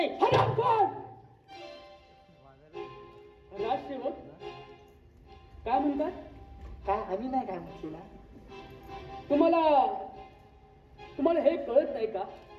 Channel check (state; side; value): identical; both; correlation 1.00